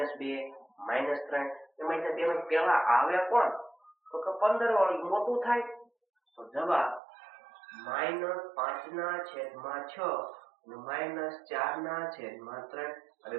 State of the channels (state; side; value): drops out; left; at 7.0 s